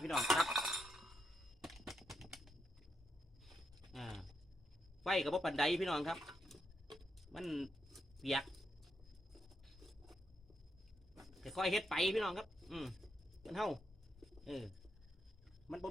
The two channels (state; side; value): normal; both; correlation 0.80